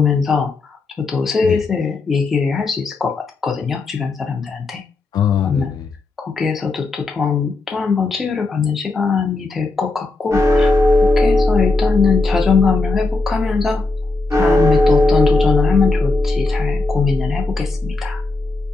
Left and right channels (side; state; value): right; quieter; 3.4 dB